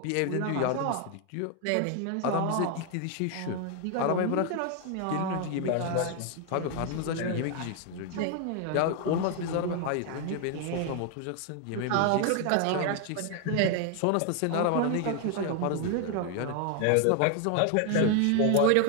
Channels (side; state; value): both; different; correlation 0.00